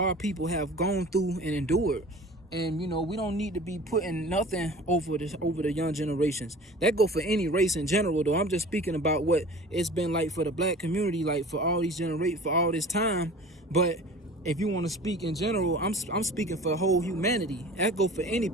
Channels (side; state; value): both; normal; correlation 0.42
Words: people have gone through and endured, and we don't need to be putting nothing over the young generations. That go for any race in general, though. I'm just speaking about what it's been like for the black community, like for all these for all this time. But if you want to speak in general, I'm speaking for the whole humanity. That go for any